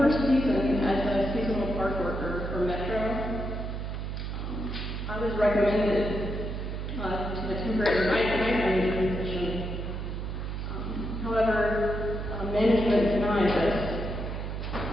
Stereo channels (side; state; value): right; noise; hum, 4 dB below the sound